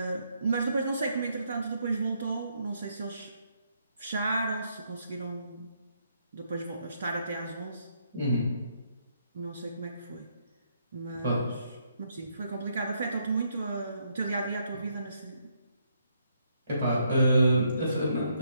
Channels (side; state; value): both; inverted; correlation -0.74